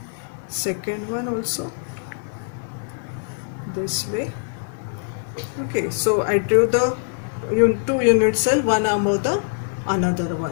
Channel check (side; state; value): right; silent; digital silence